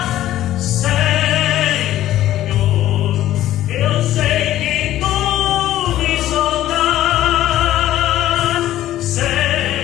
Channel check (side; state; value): right; quieter; 13.5 dB